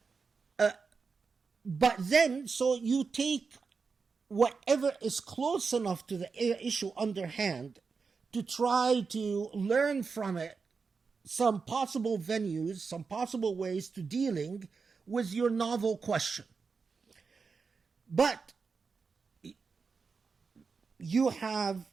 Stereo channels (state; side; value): quieter; left; 5.0 dB